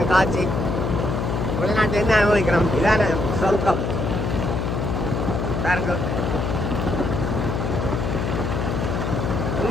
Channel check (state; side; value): noise; left; hum, 1 dB below the sound